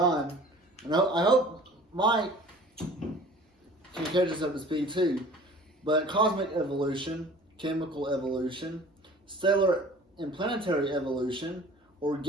And I hope Mike can catch us up to speed too. But cosmic evolution, chemical evolution, stellar and planetary evolution,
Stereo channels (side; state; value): both; normal; correlation 0.46